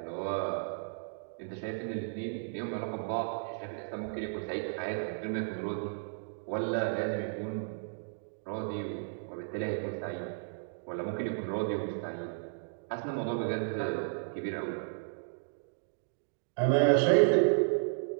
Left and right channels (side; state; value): left; silent; digital silence